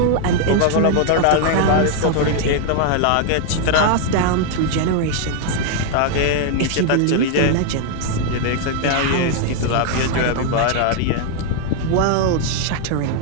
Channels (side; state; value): both; different; correlation 0.00